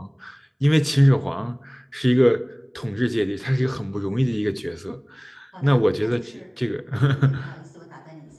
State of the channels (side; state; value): both; identical; correlation 1.00